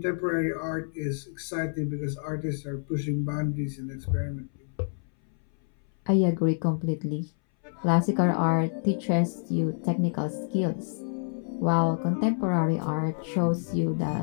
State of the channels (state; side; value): silent; right; 60 dB below the other